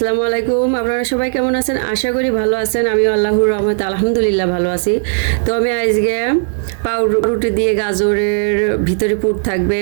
আলাইকুম। আপনারা সবাই কেমন আছেন? আশা করি ভালো আছেন। আমিও আল্লাহর রহমতে আলহামদুলিল্লাহ ভালো আছি। তো আমি আজকে পাউরুটি দিয়ে গাজরের ভিতরে পুর থাকবে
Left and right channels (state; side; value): silent; left; 64 dB below the other